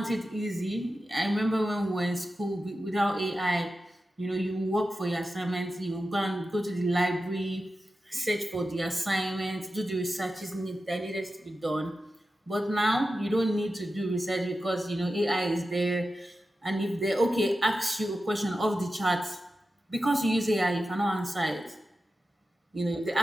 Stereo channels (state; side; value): normal; both; correlation 0.92